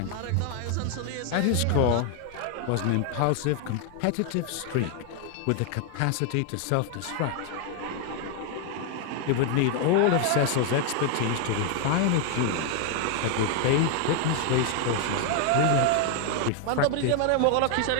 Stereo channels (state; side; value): different; both; correlation 0.00